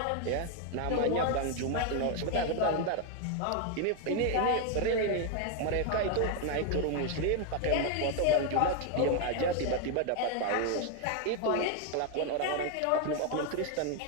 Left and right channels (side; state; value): both; different; correlation 0.01